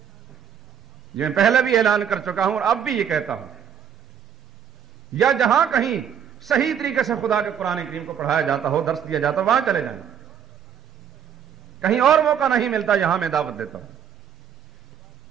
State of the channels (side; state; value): left; quieter; 8.4 dB